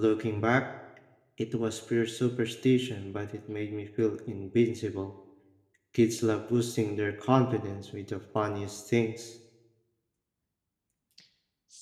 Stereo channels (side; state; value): both; identical; correlation 1.00